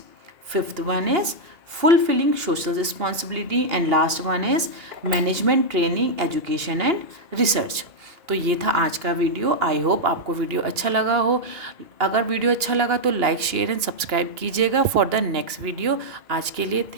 fifth one is fulfilling social responsibility, and last one is management training, education and research। तो ये था आज का video. I hope आपको video अच्छा लगा हो। अगर वीडियो अच्छा लगा तो लाइक शेयर एंड सब्सक्राइब कीजिएगा फॉर द नेक्स्ट वीडियो। आज के लिए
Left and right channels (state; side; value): late; left; 2.8 ms